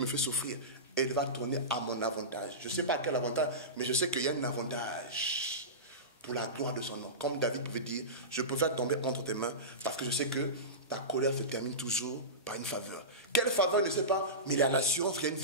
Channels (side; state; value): both; normal; correlation -0.20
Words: fait souffrir, elle va tourner à mon avantage. Je ne sais pas à quel avantage, mais je sais qu'il y a un avantage pour la gloire de son nom. Comme David pouvait dire, je préfère tomber entre tes mains parce que je sais que ta colère se termine toujours par une faveur. Quelle faveur, je ne sais pas, mais il y a l'assurance qu'il y a une